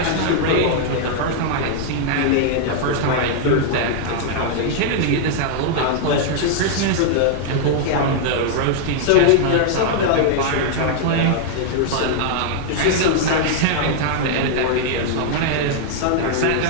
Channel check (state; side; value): different; both; correlation -0.01